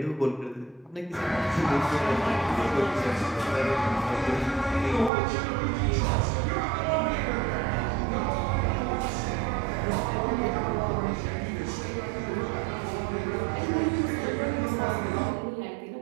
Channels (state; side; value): drops out; left; at 5.1 s